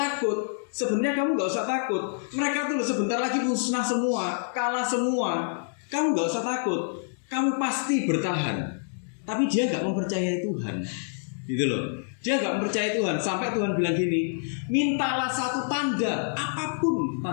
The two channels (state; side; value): silent; right; digital silence